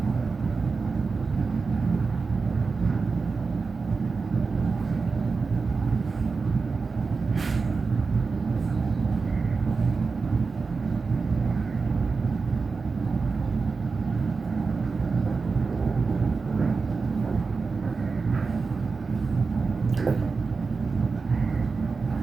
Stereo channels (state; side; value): quieter; left; 4.5 dB